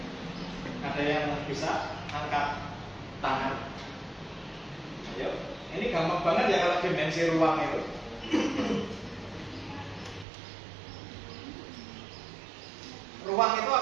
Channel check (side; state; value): left; drops out; at 10.2 s